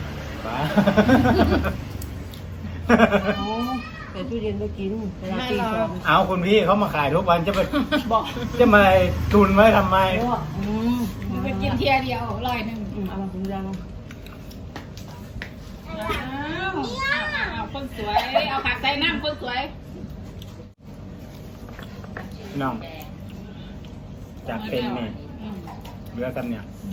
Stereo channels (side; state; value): both; identical; correlation 1.00